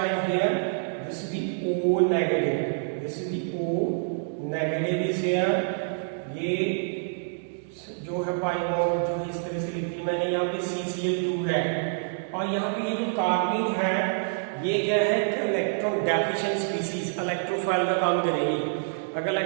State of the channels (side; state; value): left; silent; digital silence